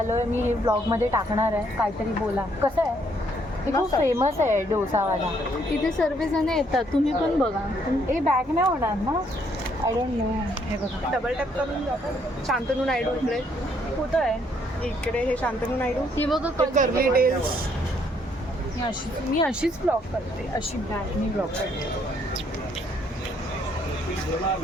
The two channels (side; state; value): both; normal; correlation 0.69